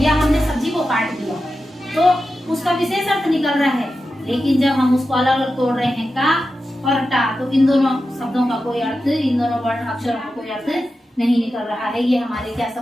हमने सब्जी को काट दिया, तो उसका विशेष अर्थ निकल रहा है। लेकिन जब हम उसको अलग अलग तोड़ रहे हैं का और टा, तो इन दोनों शब्दों का कोई अर्थ, इन दोनों वर्ण अक्षरों का कोई अर्थ नहीं निकल रहा है। ये हमारे क्या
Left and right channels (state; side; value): normal; both; correlation 0.91